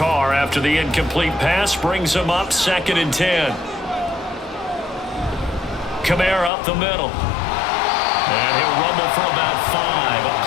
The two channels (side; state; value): right; drops out; at 6.5 s